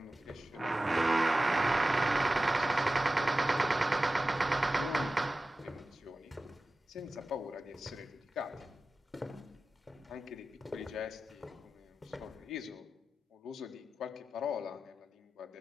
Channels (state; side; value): normal; both; correlation 0.95